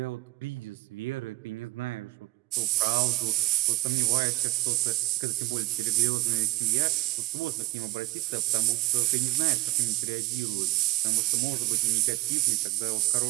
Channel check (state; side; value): quieter; left; 17.8 dB